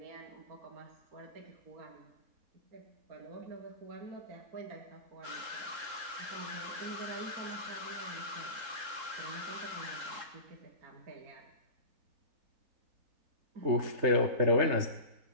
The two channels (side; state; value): left; late; 3.7 ms